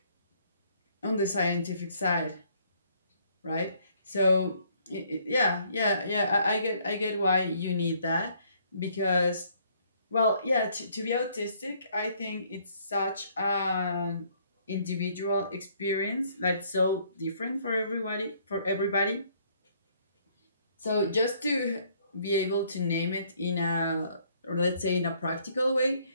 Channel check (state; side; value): inverted; both; correlation -0.64